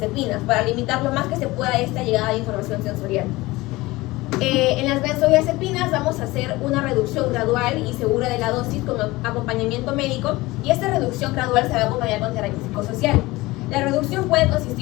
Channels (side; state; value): right; quieter; 20.3 dB